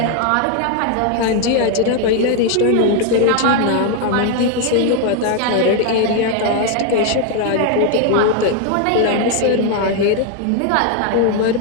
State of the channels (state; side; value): different; both; correlation 0.01